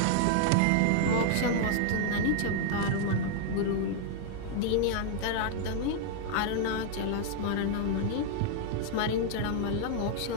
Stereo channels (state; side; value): different; both; correlation -0.01